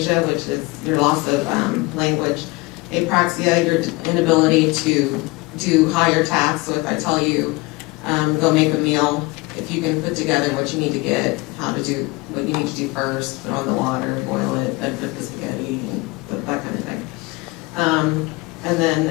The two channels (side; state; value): right; quieter; 23.4 dB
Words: which is your loss of language. Apraxia, your inability to do higher tasks. So if I tell you, go make a meal, if you can put together what you need to get, how to do what you need to do first, put on the water, boil it, then put the spaghetti, and that kind of thing. And